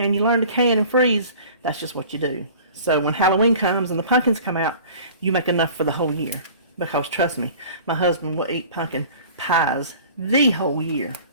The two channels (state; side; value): inverted; both; correlation -0.45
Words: you learn to can and freeze, that's just what you do. So when Halloween comes and the pumpkins come out, you make enough for the whole year. Because trust me, my husband will eat pumpkin pies the whole year.